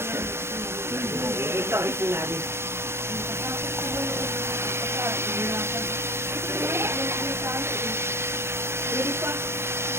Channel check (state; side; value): late; left; 0.12 ms